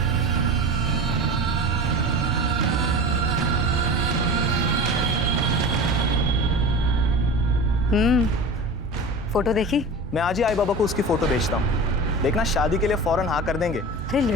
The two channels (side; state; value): both; normal; correlation 0.33